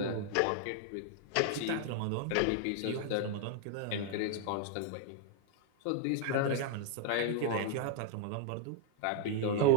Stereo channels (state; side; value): different; both; correlation 0.00